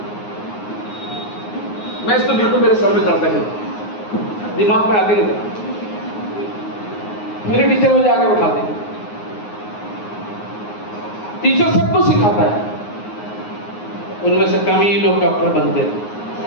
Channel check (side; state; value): right; late; 9.6 ms